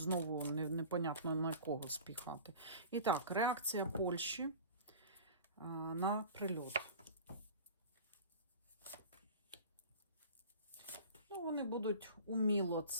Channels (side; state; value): both; inverted; correlation -0.39